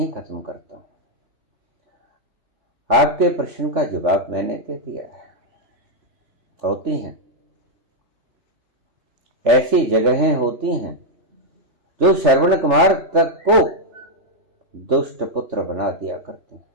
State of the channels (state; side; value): late; left; 3.4 ms